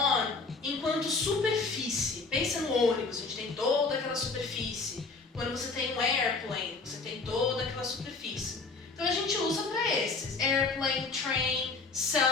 enquanto superfície. Pensa no ônibus, a gente tem toda aquela superfície. Quando você tem um airplane, você tem toda aquela superfície. Então a gente usa para esses. Airplane, train,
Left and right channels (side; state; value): right; quieter; 4.1 dB